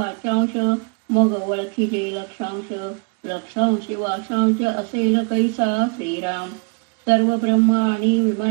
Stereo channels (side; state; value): left; quieter; 35.7 dB